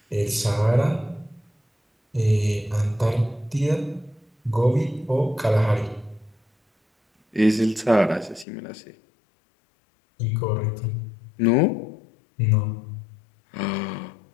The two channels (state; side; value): drops out; right; at 8.5 s